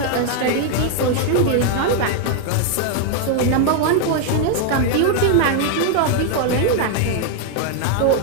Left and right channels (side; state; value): both; different; correlation 0.00